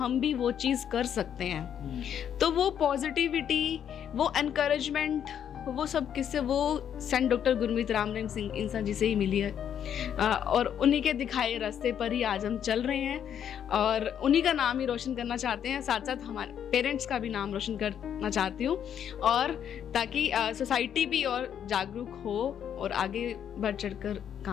भी वो चीज़ कर सकते हैं। तो वो पॉजिटिविटी, वो एनकरेजमेंट, वो सब किससे, वो सेंट डॉक्टर गुरमीत राम रहीम सिंह इंसान जी से ही मिली है, और उन्हीं के दिखाए रास्ते पर ही आज हम चल रहे हैं, और उन्हीं का नाम ही रोशन करना चाहते हैं। साथ साथ हमारे पेरेंट्स का भी नाम रोशन करना चाहती हूँ, और ताकि सोसाइटी भी और जागरूक हो और आगे बढ़ चढ़कर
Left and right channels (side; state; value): right; quieter; 9.1 dB